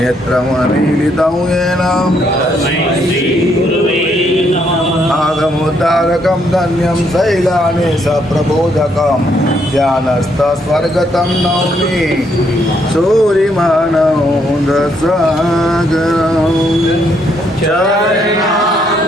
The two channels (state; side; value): normal; both; correlation 0.73